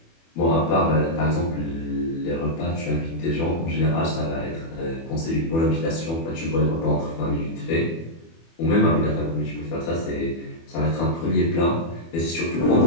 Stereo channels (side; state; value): right; late; 24 ms